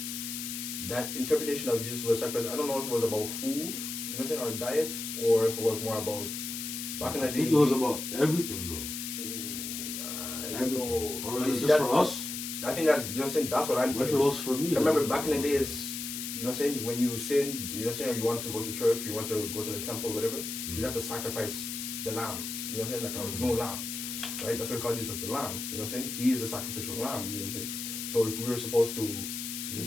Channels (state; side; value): noise; left; hiss, 5 dB below the sound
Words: that interpretation of Jesus was a sacrifice, I don't know if it was about food, you know what I'm saying, or diet, or if it was more about back in the day. I think it was about everything though. Everything. Or is it just for us? I think that's, you know what I'm saying, that's what I'm thinking. If it was for me. I remember back in the days, you know what I'm saying, when you sin, you know what I'm saying, or you wanted to go to church, you wanted to go to the temple, whatever, you have to sacrifice the lamb. You know what I'm saying? Like no lamb. Right? That's why we call Jesus the lamb. You know what I'm saying? He is the sacrificial lamb, you know what I'm saying? So if we were supposed to, you know